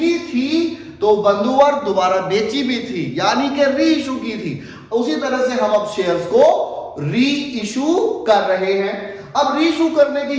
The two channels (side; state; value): both; identical; correlation 1.00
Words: थी तो बंधुवर दोबारा बेची भी थी, यानी कि रीइशू की थी। उसी तरह से हम अब शेयर्स को रीइशू कर रहे हैं। अब रीइशू करने की